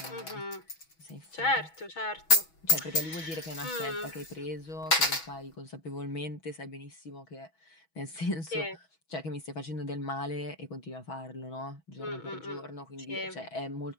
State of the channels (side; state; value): right; late; 6.2 ms